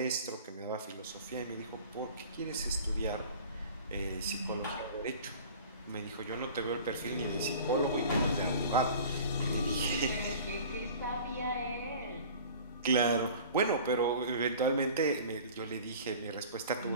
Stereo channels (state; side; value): inverted; both; correlation -0.43